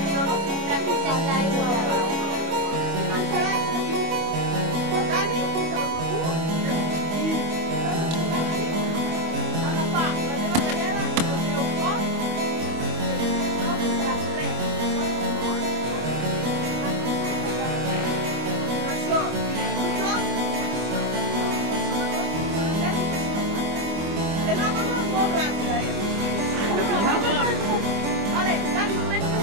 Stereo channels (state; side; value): late; left; 25 ms